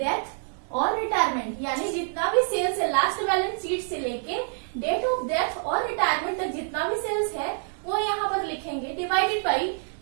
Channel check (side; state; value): left; silent; digital silence